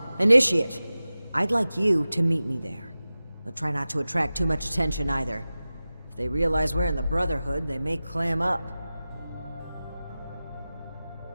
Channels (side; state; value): both; inverted; correlation -0.96